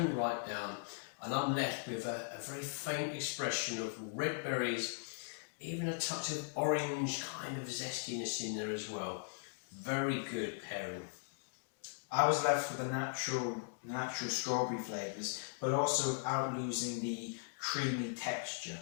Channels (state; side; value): silent; right; digital silence